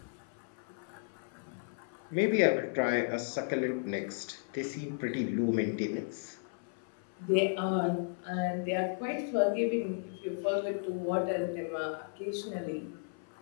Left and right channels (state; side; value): silent; right; 55 dB below the other